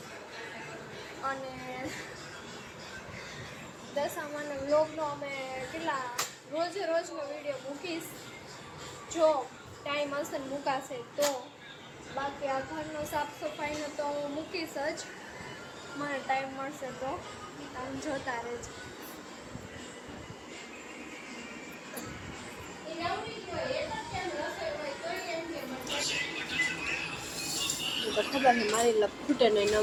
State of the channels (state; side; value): identical; both; correlation 1.00